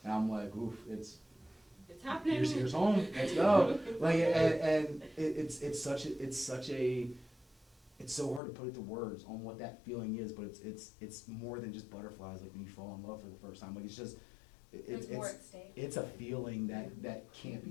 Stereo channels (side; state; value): right; drops out; at 8.4 s